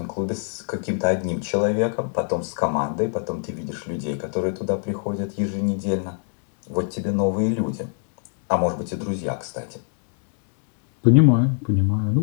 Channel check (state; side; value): silent; right; 62 dB below the other